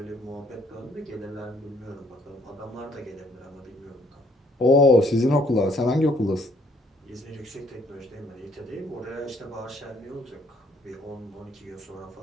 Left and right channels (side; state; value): both; normal; correlation 0.65